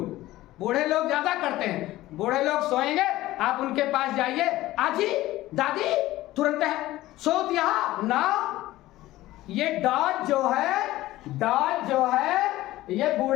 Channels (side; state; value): right; quieter; 16.5 dB